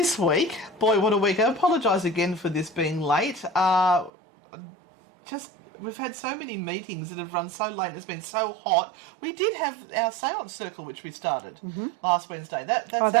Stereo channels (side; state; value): left; drops out; at 4.1 s